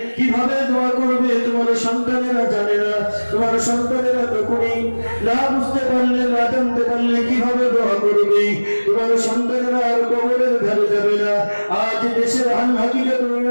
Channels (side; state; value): both; inverted; correlation -1.00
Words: কিভাবে দোয়া করবে তোমার সন্তানেরা জানে না। তোমার সন্তানেরা তখনই না বুঝতে পারলে, না জানতে পারলে কিভাবে দোয়া করবে। তোমার সন্তানেরা আর কবরের ধারে যাবে না। আজ দেশের হাল হাকিকত